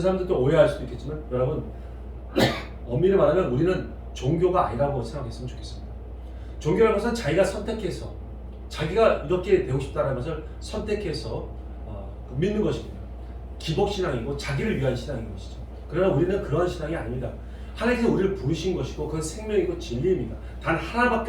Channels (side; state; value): both; identical; correlation 1.00